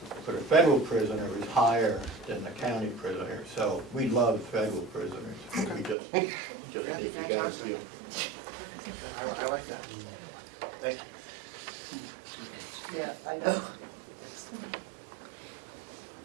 for the federal prisoner is higher than the county prisoner, so we love federal prisoners. We just need to get Fantastic. them. I like that. Thank you. Yeah, I know.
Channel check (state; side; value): drops out; left; at 6.0 s